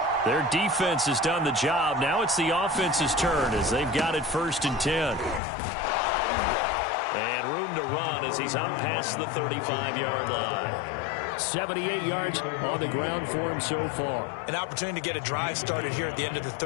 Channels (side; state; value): right; drops out; at 5.4 s